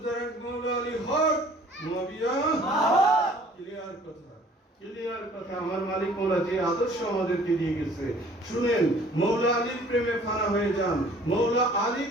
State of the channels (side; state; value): both; normal; correlation 0.53